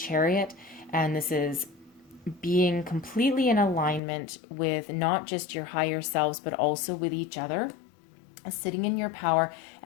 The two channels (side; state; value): right; drops out; at 4.0 s